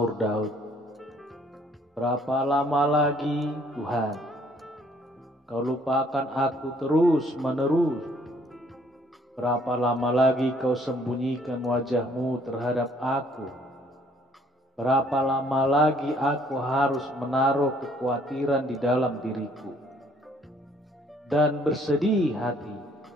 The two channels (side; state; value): both; normal; correlation 0.62